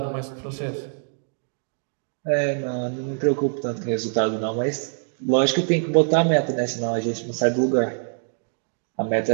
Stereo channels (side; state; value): left; silent; digital silence